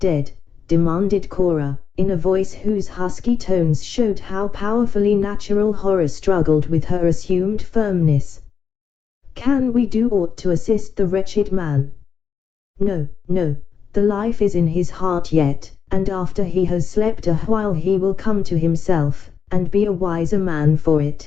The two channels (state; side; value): quieter; right; 6.8 dB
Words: demanded Cora, in a voice whose husky tones showed how powerfully natural horror struggled with her assumed firmness. "Can we do aught to assist the wretched man?" No, the life is in his heart yet, and after he has slept a while he will come to himself, and be a wiser man for